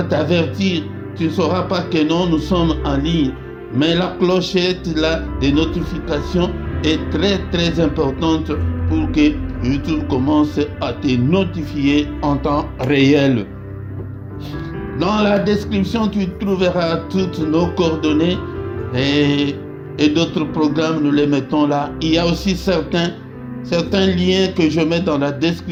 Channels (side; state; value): both; identical; correlation 1.00